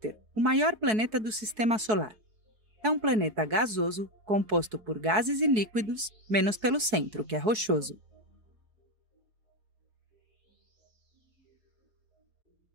o maior planeta do sistema solar. É um planeta gasoso, composto por gases e líquidos, menos pelo centro, que é rochoso.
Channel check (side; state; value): left; late; 4.6 ms